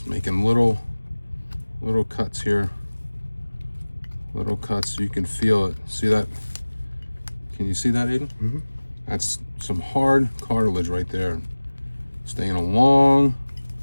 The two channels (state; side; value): inverted; both; correlation -1.00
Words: making little cuts here. Little cuts so you can feel it. See that? Can you see that, Aiden? Mm-hmm. That's some hard cartilage right there. Staying along